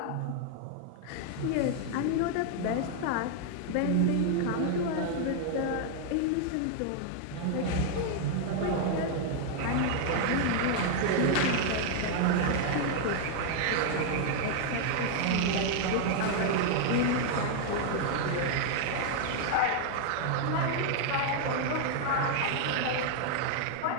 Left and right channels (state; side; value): different; both; correlation 0.00